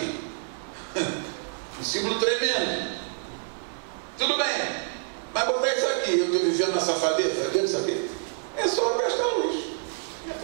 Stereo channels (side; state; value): left; silent; 60 dB below the other